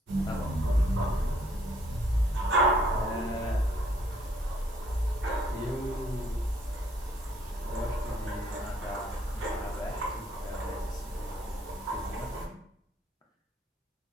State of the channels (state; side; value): normal; both; correlation 0.66